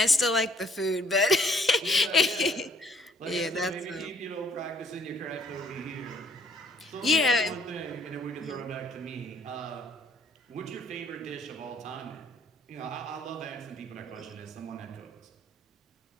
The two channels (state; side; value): normal; both; correlation 0.62